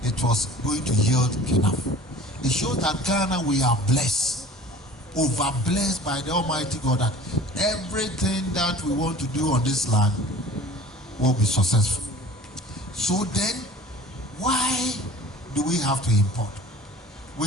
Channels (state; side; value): normal; both; correlation 0.44